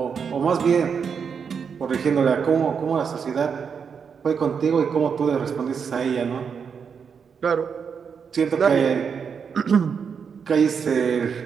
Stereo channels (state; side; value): quieter; left; 6.5 dB